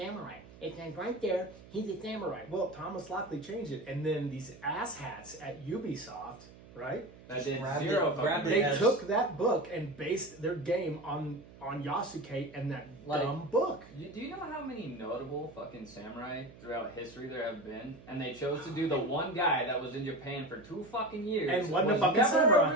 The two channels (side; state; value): right; noise; hum, 20 dB below the sound